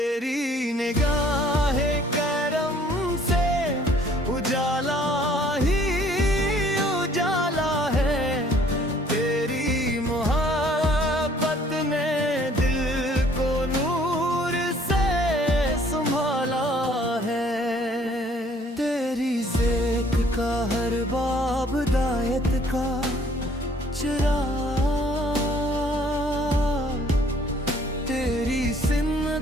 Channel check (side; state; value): both; normal; correlation 0.59